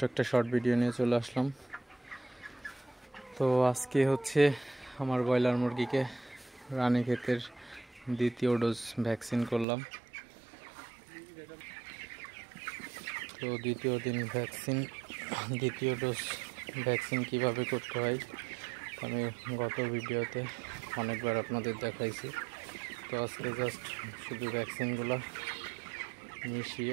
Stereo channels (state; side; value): drops out; left; at 9.7 s